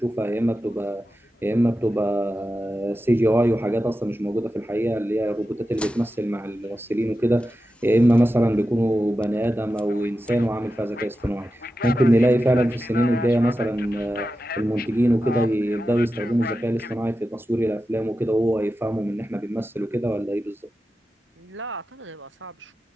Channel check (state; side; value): normal; both; correlation 0.92